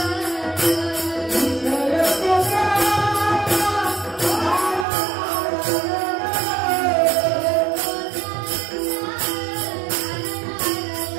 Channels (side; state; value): left; drops out; at 4.9 s